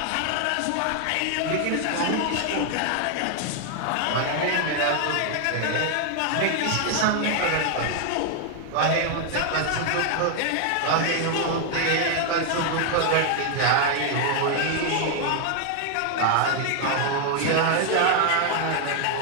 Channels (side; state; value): both; different; correlation 0.00